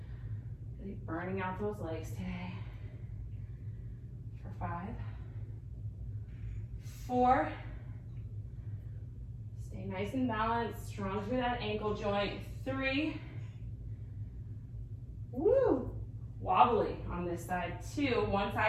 Really burning out those legs today. For 5, 4, stay nice and balanced, strong through that ankle joint. 3, woo, wobbly on this side. 2, one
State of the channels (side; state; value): both; identical; correlation 1.00